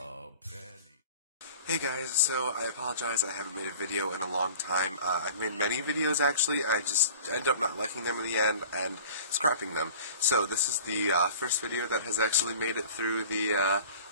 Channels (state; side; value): inverted; both; correlation -0.43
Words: penny? Hey guys, so I apologize, I haven't made a video in a long time. I've made many videos actually, I just end up not liking them in the end and scrapping them. So this is the first video that has actually made it through the